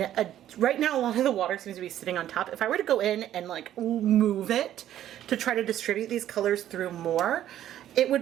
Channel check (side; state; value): left; quieter; 11.8 dB